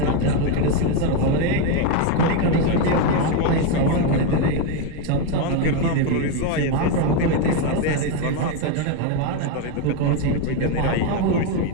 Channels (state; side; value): different; both; correlation 0.03